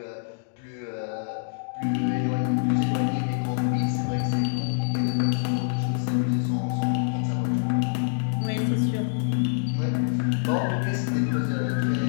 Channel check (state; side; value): silent; right; digital silence